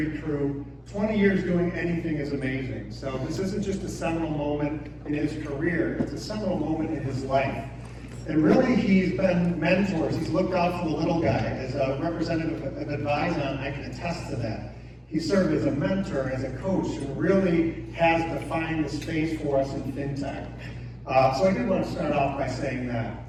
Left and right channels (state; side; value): identical; both; correlation 1.00